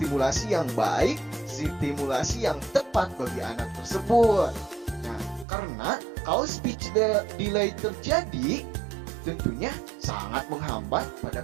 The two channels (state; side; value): drops out; left; at 5.5 s